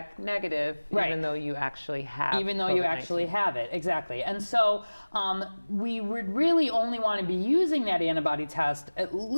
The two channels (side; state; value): both; inverted; correlation -1.00